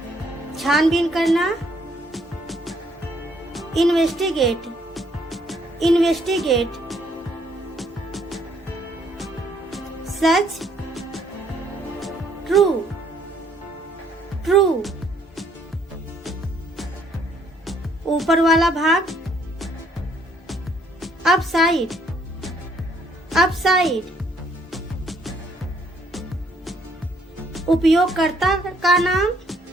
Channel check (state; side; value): normal; both; correlation 0.66